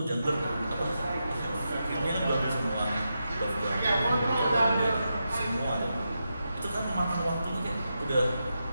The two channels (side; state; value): both; inverted; correlation -0.87